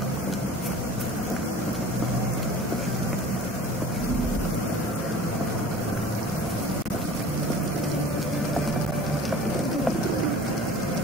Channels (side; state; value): both; normal; correlation 0.43